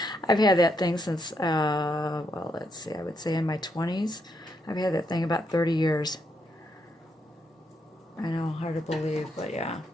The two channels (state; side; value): normal; both; correlation 0.78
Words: had that thing since, well, let's see, I would say in my 20s. I've had that thing about 30 years. I know, hard to believe, but yeah.